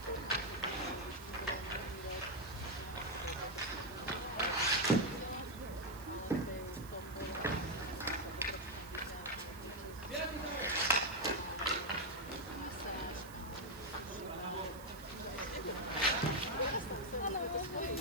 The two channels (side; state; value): right; noise; hiss, 18 dB below the sound